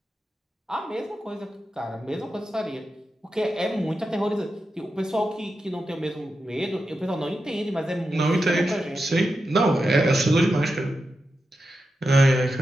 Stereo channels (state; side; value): normal; both; correlation 0.89